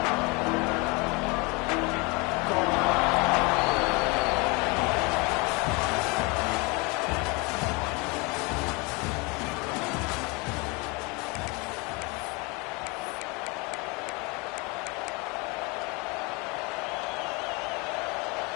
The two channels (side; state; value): right; quieter; 28.2 dB